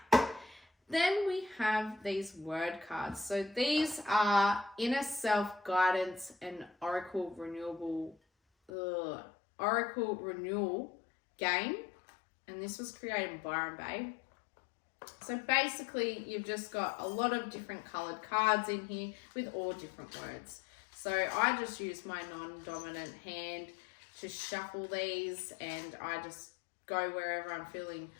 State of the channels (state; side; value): drops out; right; at 8.7 s